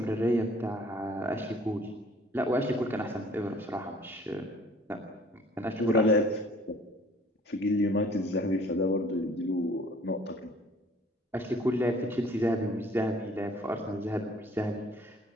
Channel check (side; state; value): both; normal; correlation 0.55